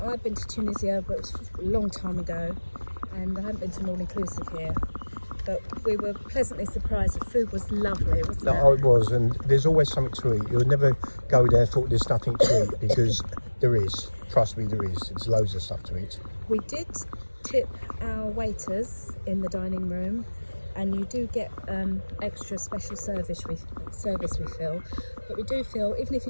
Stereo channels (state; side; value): inverted; both; correlation -1.00